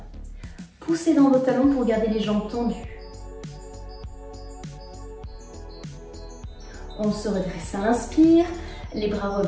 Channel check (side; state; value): both; identical; correlation 1.00